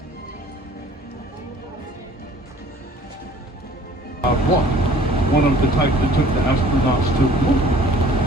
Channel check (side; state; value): both; normal; correlation 0.51